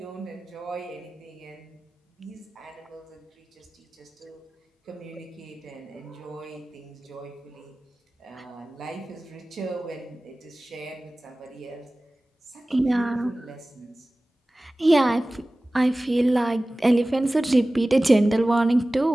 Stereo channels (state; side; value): normal; both; correlation 0.97